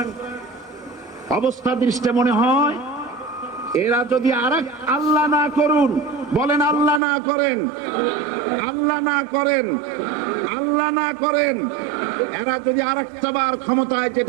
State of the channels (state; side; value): drops out; left; at 7.0 s